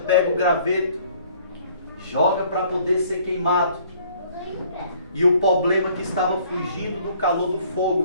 o graveto, joga para poder ser queimado. E o problema que estava fugindo do calor do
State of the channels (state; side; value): inverted; both; correlation -0.58